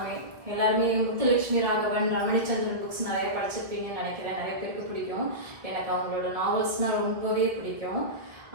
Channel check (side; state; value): left; late; 1.4 ms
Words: முத்துலட்சுமி ராகவன், ரமணிச்சந்திரன் புக்ஸ் நிறைய படிச்சிருப்பீங்கன்னு நினைக்கிறேன். நிறைய பேருக்கு பிடிக்கும். எனக்கு அவங்களோட நாவல்ஸ்னால் ரொம்பவே பிடிக்கும்.